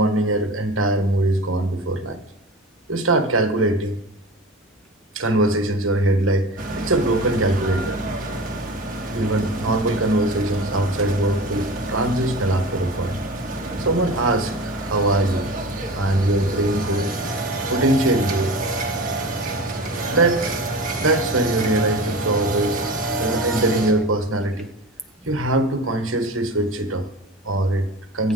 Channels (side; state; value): both; normal; correlation 0.33